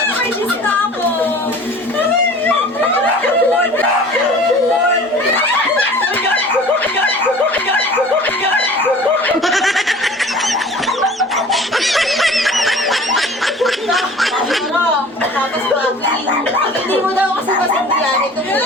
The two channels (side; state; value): both; normal; correlation 0.44